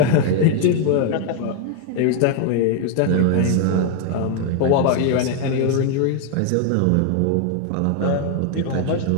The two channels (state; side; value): different; both; correlation 0.01